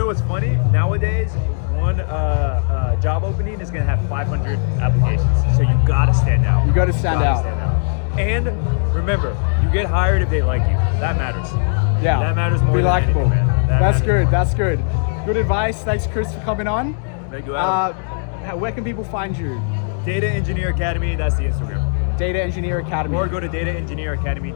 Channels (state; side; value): silent; right; digital silence